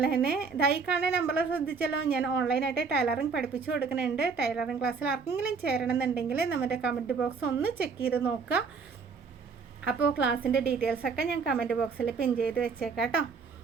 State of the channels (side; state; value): left; quieter; 5.2 dB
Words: തന്നെ ഈ കാണുന്ന നമ്പറിൽ ശ്രദ്ധിച്ചല്ലോ, ഞാൻ ഓൺലൈനായിട്ട് ടൈലറിങ് പഠിപ്പിച്ചു കൊടുക്കുന്നുണ്ട്. ടൈലറിങ് ക്ലാസ്സിൽ ആർക്കെങ്കിലും ചേരണമെന്നുണ്ടെങ്കിൽ നമ്മുടെ കമൻറ്റ് ബോക്സ് ഒന്ന് ചെക്ക് ചെയ്ത് നോക്കുക. അപ്പോൾ ക്ലാസ്സിൻ്റെ ഡീറ്റെയിൽസൊക്കെ ഞാൻ കമൻറ്റ് ബോക്സിൽ പിൻ ചെയ്ത് വെച്ചേക്കാം കേട്ടോ.